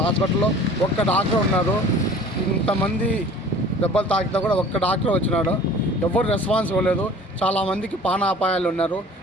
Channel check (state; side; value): normal; both; correlation 0.46